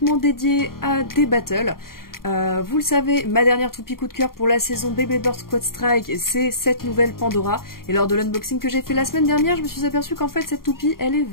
dédiée à des battles. Vous le savez, ma dernière toupie coup de cœur pour la saison Beyblade Burst Quad Strike, c'est cette nouvelle Pandora. Et lors de l'unboxing que j'ai fait la semaine dernière, je me suis aperçue qu'en fait cette toupie, elle est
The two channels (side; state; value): right; late; 0.92 ms